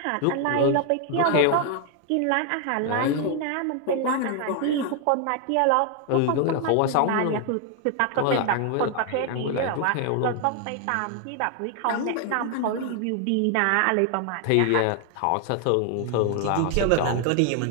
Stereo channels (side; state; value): both; different; correlation 0.00